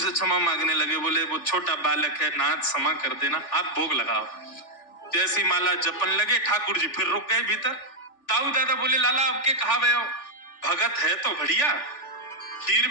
क्षमा मांगने लगे। बोले वो छोटा बालक है, नाथ क्षमा कर देना, आप भोग लगाओ। जैसी माला जपन लगे, ठाकुर जी फिर रुक गए भीतर। ताऊ दादा बोले लाला अब के कहा गए हो? भगत है तो बढ़िया, खीर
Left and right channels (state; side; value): late; right; 3.4 ms